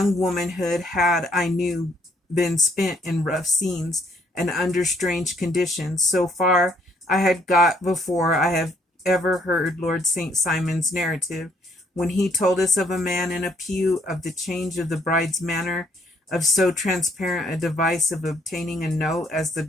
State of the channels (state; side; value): normal; both; correlation 0.67